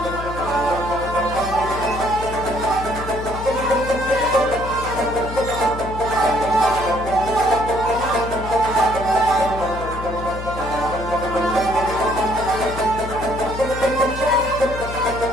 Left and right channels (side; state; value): left; noise; hum, 9 dB below the sound